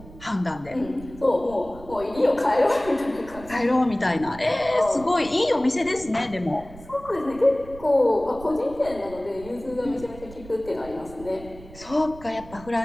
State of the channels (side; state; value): right; noise; rumble, 18 dB below the sound